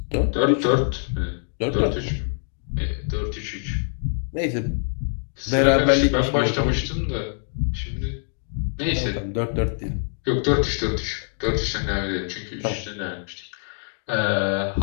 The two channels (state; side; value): silent; right; 62 dB below the other